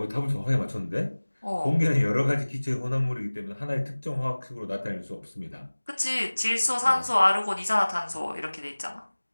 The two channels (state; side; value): inverted; both; correlation -1.00